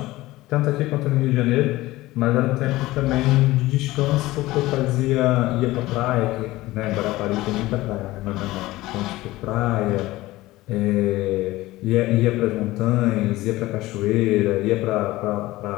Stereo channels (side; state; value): right; quieter; 18.1 dB